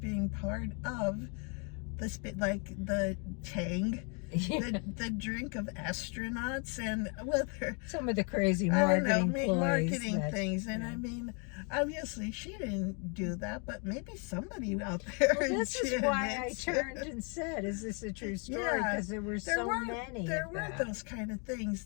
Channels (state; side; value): quieter; right; 36.3 dB